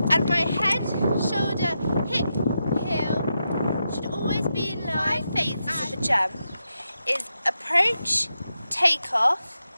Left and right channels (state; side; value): inverted; both; correlation -0.86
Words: and my head, shoulder, hip, heel should always be in line. 5 phases of a jump is approach, take off,